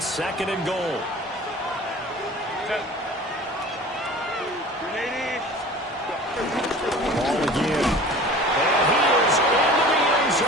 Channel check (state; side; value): normal; both; correlation 0.42